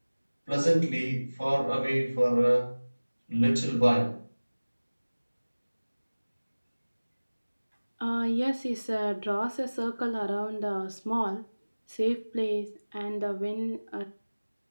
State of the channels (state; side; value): inverted; both; correlation -1.00